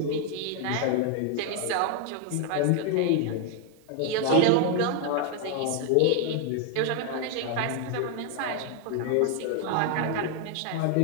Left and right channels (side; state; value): both; different; correlation 0.01